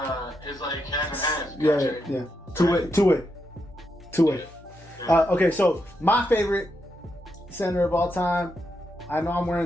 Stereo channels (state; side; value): normal; both; correlation 0.83